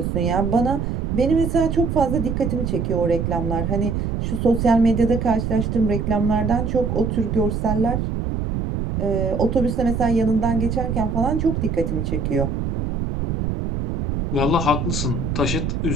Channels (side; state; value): right; noise; rumble, 2 dB below the sound